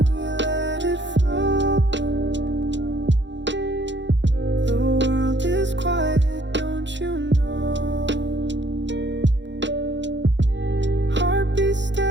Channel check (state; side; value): late; left; 0.53 ms